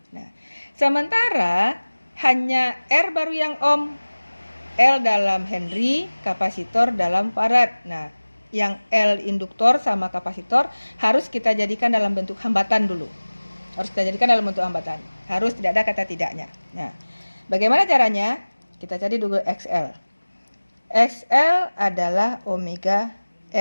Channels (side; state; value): both; inverted; correlation -1.00